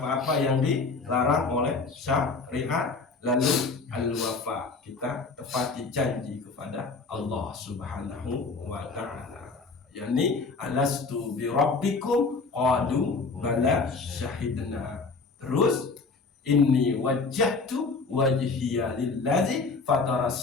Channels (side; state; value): right; quieter; 4.2 dB